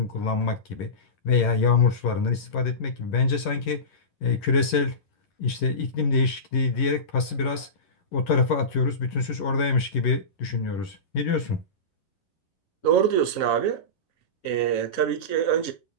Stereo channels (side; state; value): right; late; 11 ms